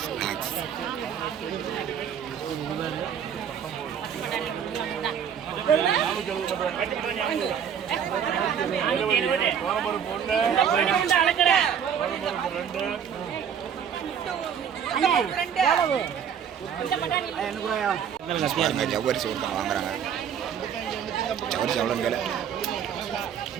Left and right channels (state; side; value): quieter; left; 8.1 dB